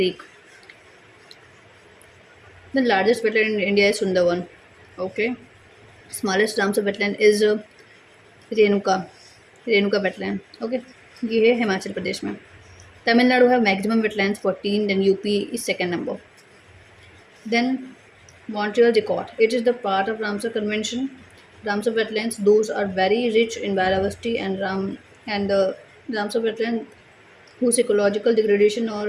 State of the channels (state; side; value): identical; both; correlation 1.00